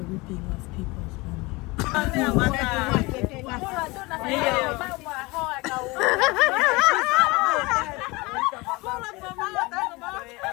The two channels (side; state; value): right; quieter; 23.9 dB